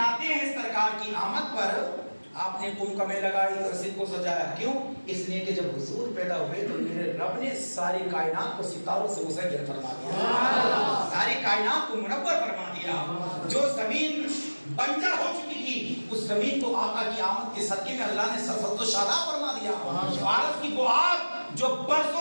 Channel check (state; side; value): inverted; both; correlation -1.00